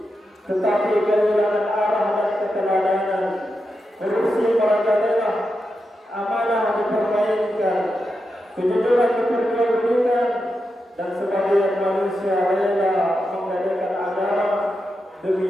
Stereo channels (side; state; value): both; normal; correlation 0.88